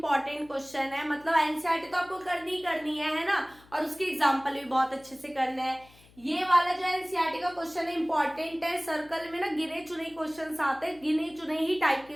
क्वेश्चन है, मतलब एनसीईआरटी तो आपको करनी है ना, और उसके एग्जाम्पल भी बहुत अच्छे से करने हैं। ये वाला जो एनसीईआरटी का क्वेश्चन है इंपॉर्टेंट है, सर्कल में ना गिने चुने क्वेश्चन आते हैं, गिने चुने ही टाइप के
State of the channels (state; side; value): noise; left; hum, 26 dB below the sound